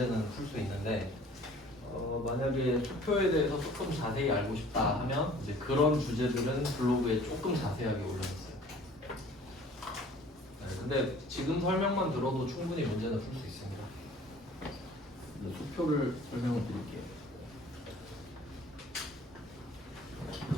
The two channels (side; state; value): both; normal; correlation 0.50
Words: 풀 수 있는데 만약에 수표에 대해서 조금 자세히 알고 싶다 하면 이제 그런 주제들은 블로그에 조금 자세하게 올려놨어요. 네, 근데 지금 설명만 들어도 충분히 문제는 풀 수 있습니다. 수표를 설명을 드릴게요.